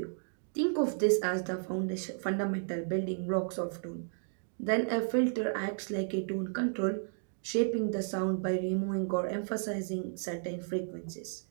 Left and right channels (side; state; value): left; silent; digital silence